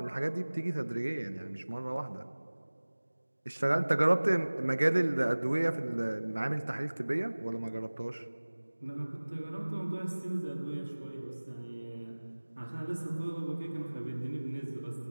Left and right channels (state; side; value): inverted; both; correlation -1.00